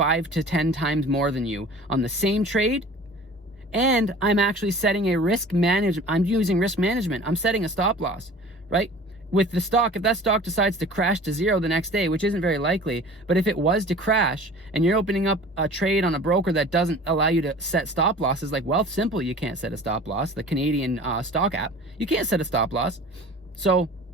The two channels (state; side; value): normal; both; correlation 0.43